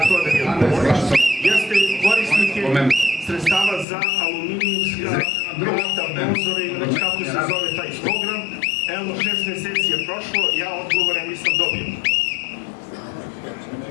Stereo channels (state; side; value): drops out; right; at 3.9 s